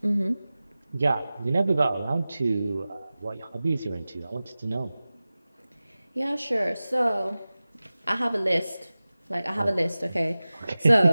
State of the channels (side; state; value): both; inverted; correlation -0.97